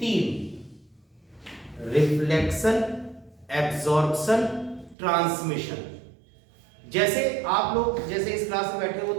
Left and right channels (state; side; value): drops out; left; at 5.0 s